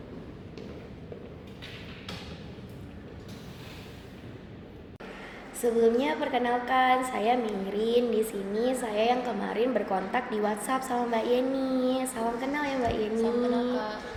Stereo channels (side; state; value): both; identical; correlation 1.00